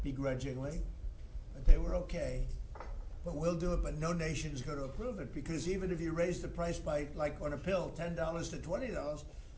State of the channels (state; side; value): identical; both; correlation 1.00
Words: begrudgingly, but they were okay. But we'll do it, but no nation is going to approve it because even if you raise the price by, like on a pill, $10 to $20,